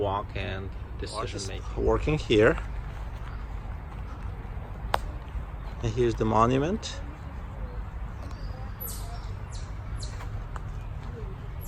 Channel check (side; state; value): both; identical; correlation 1.00